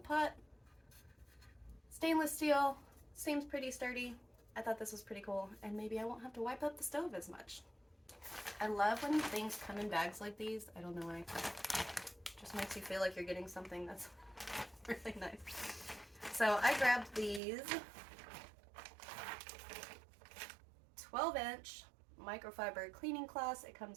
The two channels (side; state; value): left; drops out; at 17.4 s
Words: Stainless steel, seems pretty sturdy. I thought this was pretty cool, and maybe I won't have to wipe up the stove as much. I love when things come in bags like these. I don't know why. Just makes you feel like you're getting something that's really nice. So I grabbed these 12-inch microfiber cleaning cloths. It